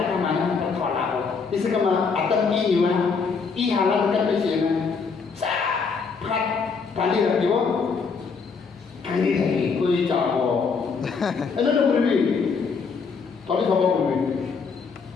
mana kita tolak bo. Ini sekarang atas ini mah, ini halang kan macam sah, pat, tali lagi bo, tali lagi, kau jawab bo. Ada tu boleh, tadi siapa boleh?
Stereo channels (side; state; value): right; quieter; 5.2 dB